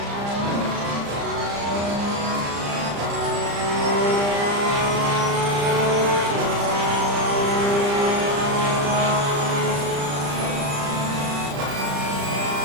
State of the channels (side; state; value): left; late; 35 ms